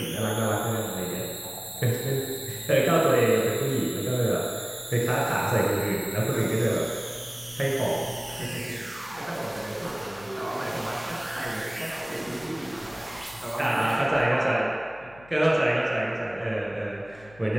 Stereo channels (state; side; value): noise; left; hum, 24 dB below the sound